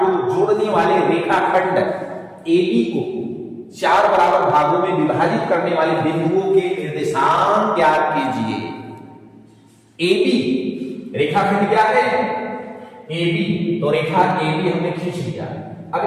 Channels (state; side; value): identical; both; correlation 1.00